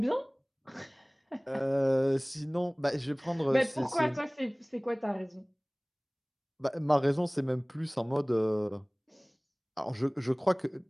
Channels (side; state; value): both; identical; correlation 1.00